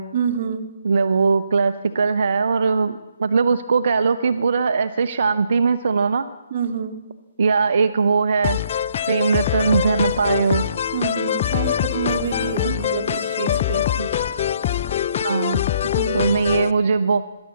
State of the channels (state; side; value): inverted; both; correlation -0.71